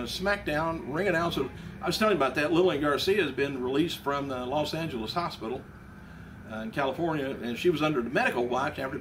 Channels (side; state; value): both; identical; correlation 1.00